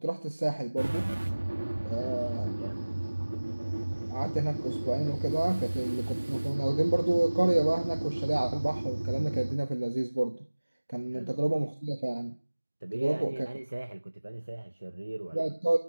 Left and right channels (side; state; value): both; inverted; correlation -1.00